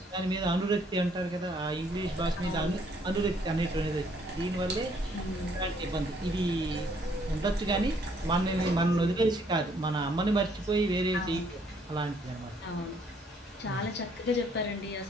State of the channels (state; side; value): normal; both; correlation 0.66